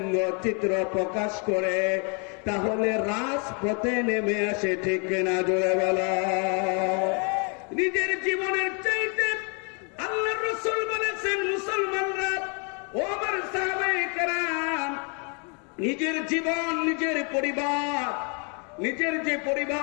চিত্র প্রকাশ করে তাহলে রাজপথে নেমে আসে, ঠিক কিনা জোরে বলো। নিজের জীবনের চাইতে আল্লাহর রাসূল বলেছেন, মুসলমানরা, ও আমার সাহাবায়ে কেরাম, নিজের জীবন, নিজের পরিবার, নিজের যে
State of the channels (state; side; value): quieter; right; 36.6 dB